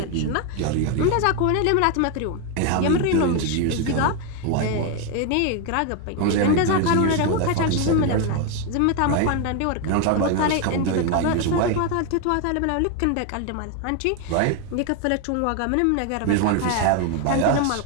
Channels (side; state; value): both; different; correlation 0.01